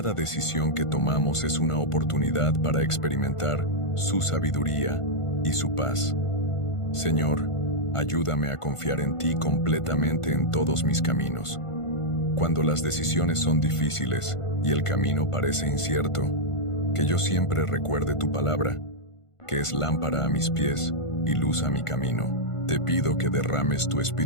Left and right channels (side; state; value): right; late; 1.5 ms